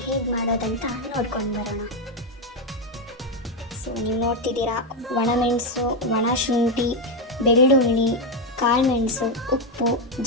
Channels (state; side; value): normal; both; correlation 0.06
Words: ಹೇಗೆ ಮಾಡೋದಂತ ನೋಡ್ಕೊಂಡು ಬರೋಣ. ಸೊ ನೀವು ನೋಡ್ತಿದ್ದೀರಾ, ಒಣಮೆಣಸು, ಒಣ ಶುಂಠಿ, ಬೆಳ್ಳುಳ್ಳಿ, ಕಾಳುಮೆಣಸು, ಉಪ್ಪು,